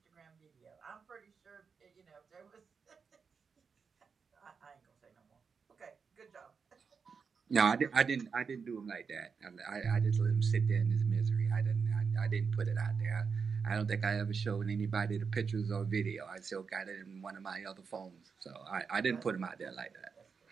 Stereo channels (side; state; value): left; quieter; 5.7 dB